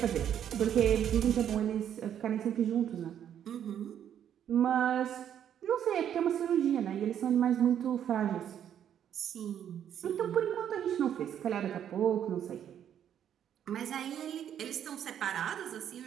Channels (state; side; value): quieter; left; 9.6 dB